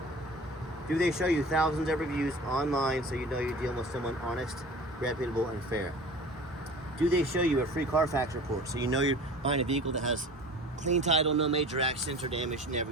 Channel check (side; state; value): both; normal; correlation 0.40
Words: do they show you thousands of reviews online so you know you're dealing with someone honest, reputable, and fair? Do they show you a free Carfax report so you know you're buying a vehicle that has clean title, no major accidents or damage,